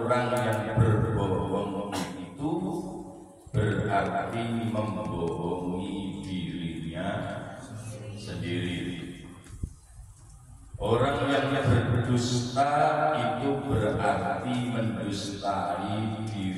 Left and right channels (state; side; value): identical; both; correlation 1.00